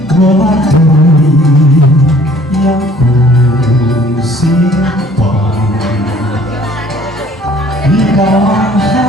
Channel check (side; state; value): both; normal; correlation 0.55